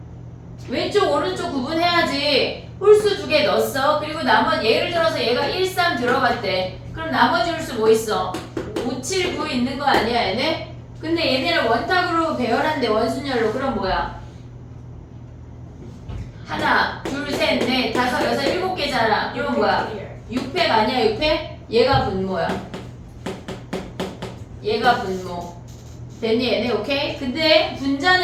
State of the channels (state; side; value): identical; both; correlation 1.00